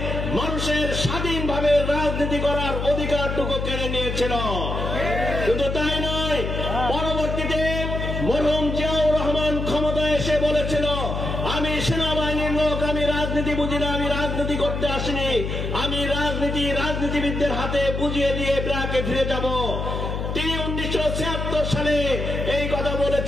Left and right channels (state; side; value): noise; left; hum, 3 dB below the sound